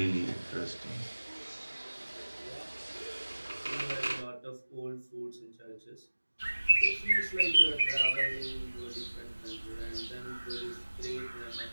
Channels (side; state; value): both; inverted; correlation -1.00